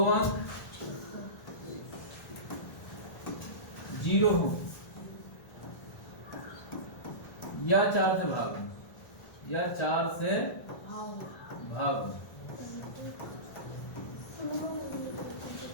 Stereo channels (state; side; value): late; right; 1.4 ms